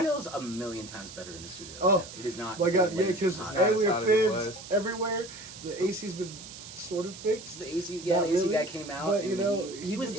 a million times better in the studio. Oh, right now. It is not. My God, yeah, because hot. we hot are as it fans everywhere. The AC's been sort of fixed. The AC, yeah, Not the AC really, guy came out. but, and you know, he was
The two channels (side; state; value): right; noise; hiss, 14 dB below the sound